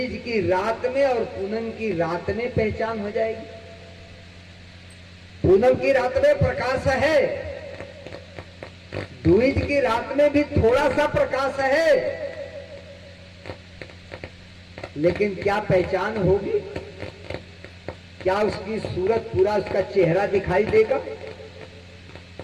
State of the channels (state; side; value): identical; both; correlation 1.00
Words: की रात में और पूनम की रात में पहचान हो जाएगी? पूनम की रात में प्रकाश है, दूईज की रात में भी थोड़ा सा प्रकाश है, लेकिन क्या पहचान होगी? क्या उसकी सूरत, पूरा उसका चेहरा दिखाई देगा?